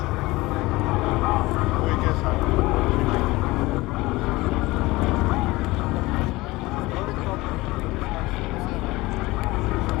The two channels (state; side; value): quieter; right; 20.5 dB